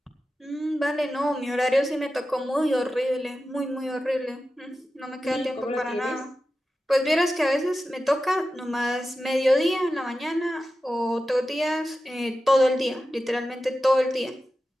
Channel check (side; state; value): both; normal; correlation 0.93